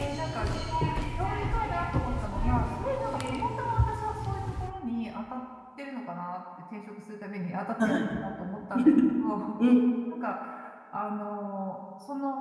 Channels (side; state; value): both; identical; correlation 1.00